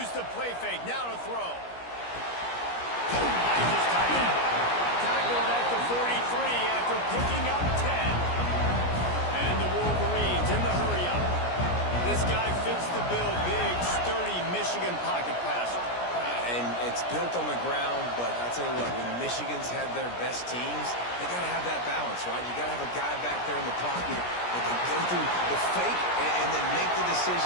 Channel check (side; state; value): right; late; 17 ms